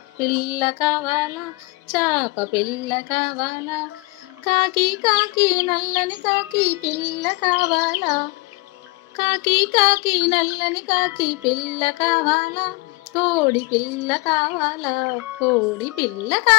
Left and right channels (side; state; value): right; quieter; 25.8 dB